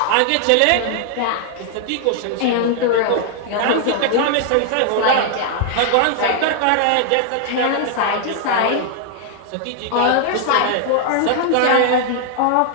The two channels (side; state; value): both; different; correlation 0.00